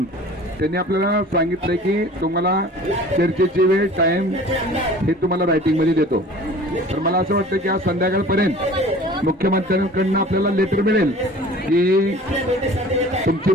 त्यांनी आपल्याला सांगितलंय की तुम्हाला चर्चेची वेळ टाइम हे तुम्हाला रायटिंगमध्ये देतो. तर मला असं वाटतं की आज संध्याकाळपर्यंत मुख्यमंत्र्यांकडून आपल्याला लेटर मिळेल की तुमची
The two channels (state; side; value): normal; both; correlation 0.45